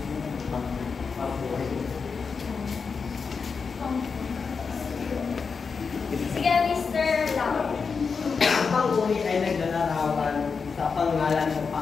Sige, Mr. Lam. Ang pang-uri ay naglalarawan sa pangalan ng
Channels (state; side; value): quieter; right; 5.3 dB